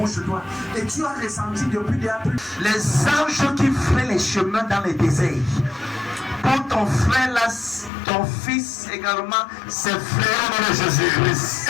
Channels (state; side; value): drops out; right; at 7.9 s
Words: sur toi. Et tu as ressenti depuis des années les anges qui feraient les chemins dans les déserts. Pour ton frère là, ton fils également, ses frères de